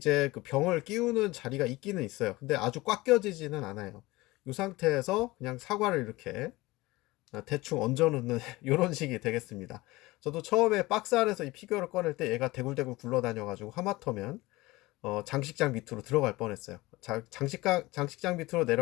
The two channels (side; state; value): right; quieter; 20.4 dB